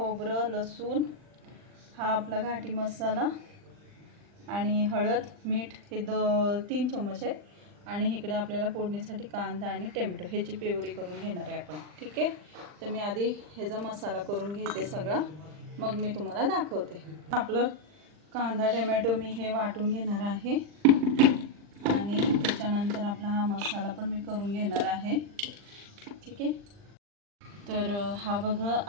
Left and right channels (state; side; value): late; left; 40 ms